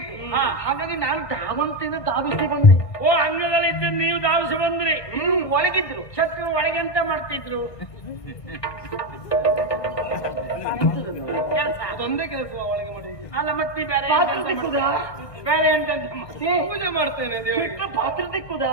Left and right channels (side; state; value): right; late; 1.5 ms